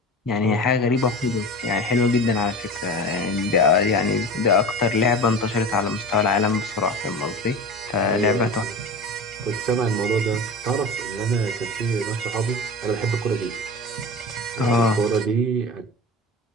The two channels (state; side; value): normal; both; correlation 0.31